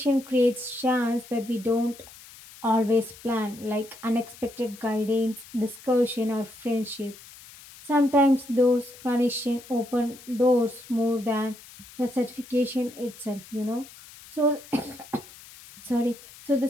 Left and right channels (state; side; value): noise; left; hiss, 19 dB below the sound